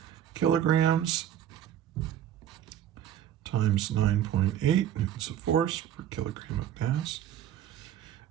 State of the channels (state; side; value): quieter; left; 10.9 dB